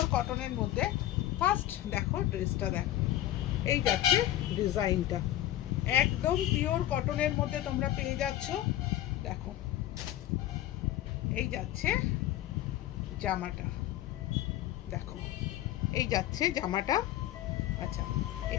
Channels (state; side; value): quieter; right; 13.9 dB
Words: কটনের মধ্যে। ফার্স্ট দেখো ড্রেসটা, দেখো এই যাচ্ছে ডিজাইনটা, একদম পিওর কটনের মধ্যে তোমরা পেয়ে যাচ্ছ। দেখো এই যাচ্ছে জামাটা, দেখো এই যাচ্ছে জামাটা। আচ্ছা,